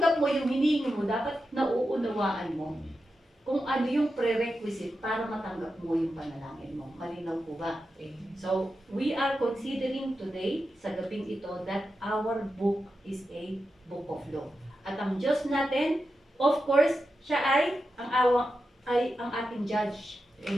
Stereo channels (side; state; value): both; normal; correlation 0.90